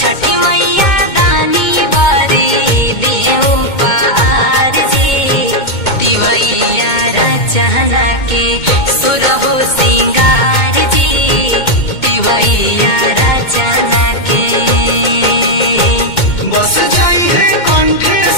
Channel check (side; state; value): right; late; 2.2 ms